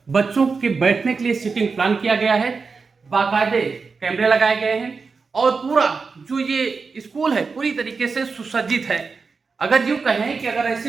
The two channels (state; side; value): quieter; left; 4.7 dB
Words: बच्चों के बैठने के लिए सीटिंग प्लान किया गया है। बाकायदे कैमरे लगाए गए हैं और पूरा जो ये स्कूल है पूरी तरीके से सुसज्जित है। अगर यूँ कहें कि अगर